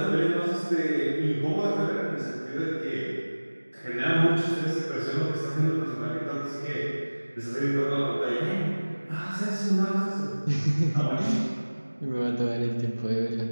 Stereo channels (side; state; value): both; inverted; correlation -1.00